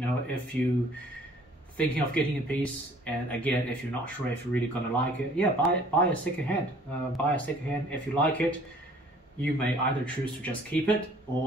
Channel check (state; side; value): normal; both; correlation 0.55